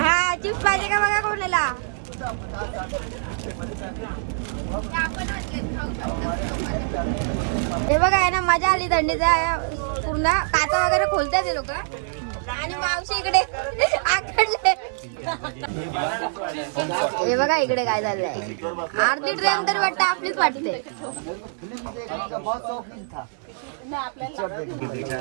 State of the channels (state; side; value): silent; left; 62 dB below the other